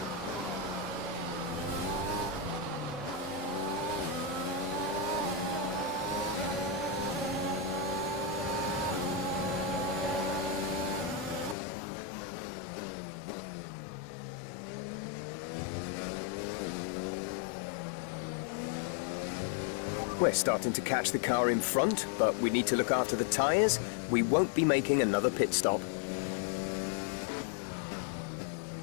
We're starting to catch the car in front, but we need to look after the tyres. We won't be making another pit stop.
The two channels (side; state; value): right; drops out; at 11.6 s